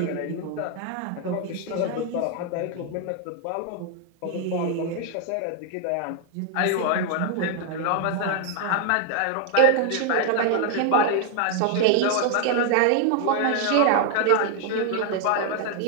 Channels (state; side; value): different; both; correlation 0.00